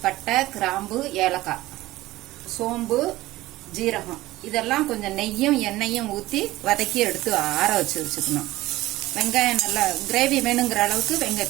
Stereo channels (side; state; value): left; quieter; 17.5 dB